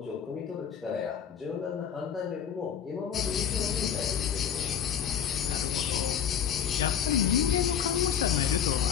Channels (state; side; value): quieter; right; 8.6 dB